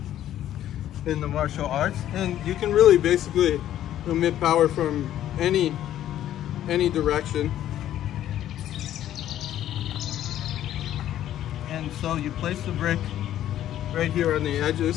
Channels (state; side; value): quieter; right; 12.0 dB